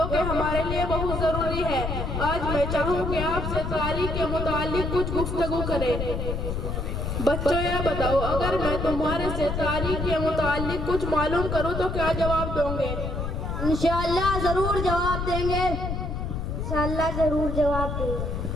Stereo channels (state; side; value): noise; left; rumble, 3 dB below the sound